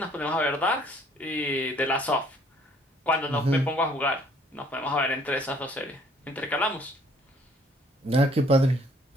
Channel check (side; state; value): both; normal; correlation 0.60